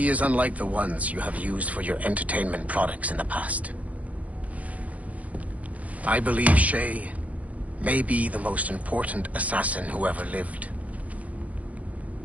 is unlike the ones you have used for your entertainment products in the past. I believe Shay may be the most important assassin who ever lived.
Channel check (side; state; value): left; late; 0.069 ms